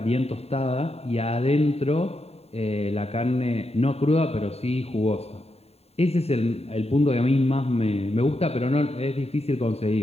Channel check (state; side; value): late; right; 0.30 ms